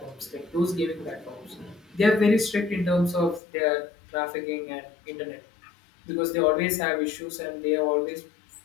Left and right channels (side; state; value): right; drops out; at 3.4 s